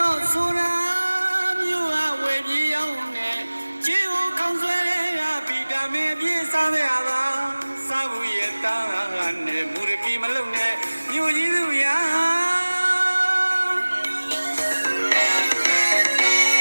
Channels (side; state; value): both; inverted; correlation -1.00